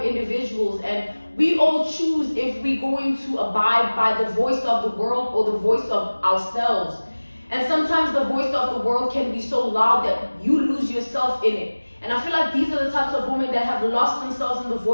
individuals, and we all choose if we're going to abide by the voice of the world or the voice of ourselves. And sometimes the voice of the world can be so loud that you lose yourself in it. And I feel like these are the types of women that have lost themselves in the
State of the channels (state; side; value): inverted; both; correlation -1.00